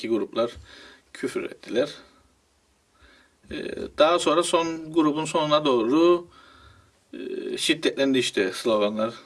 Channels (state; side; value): identical; both; correlation 1.00